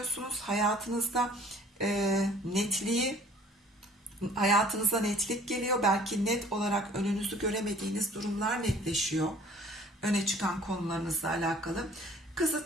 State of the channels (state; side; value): normal; both; correlation 0.54